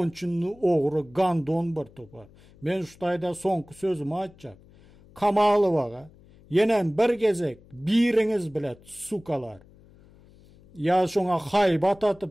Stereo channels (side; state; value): left; noise; hum, 26 dB below the sound